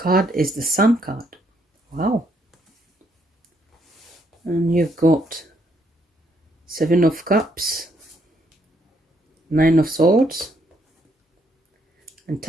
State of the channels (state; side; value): normal; both; correlation 0.73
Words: is the Sun card. Wow. And you've got 7 of Cups, 9 of Swords, and